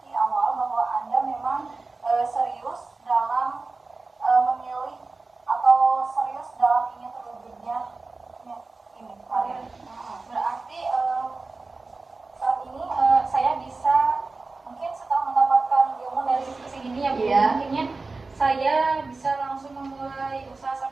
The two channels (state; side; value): quieter; left; 3.7 dB